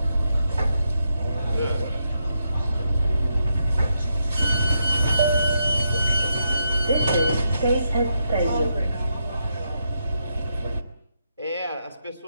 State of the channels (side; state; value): both; inverted; correlation -0.81